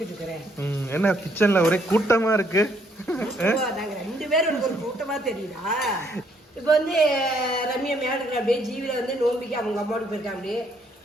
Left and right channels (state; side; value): normal; both; correlation 0.68